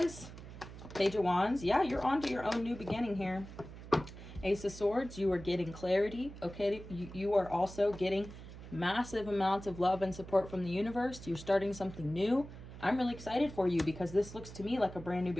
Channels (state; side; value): noise; right; hum, 14 dB below the sound